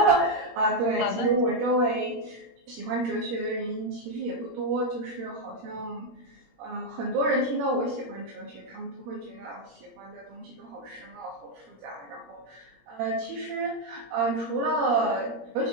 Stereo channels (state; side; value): late; left; 17 ms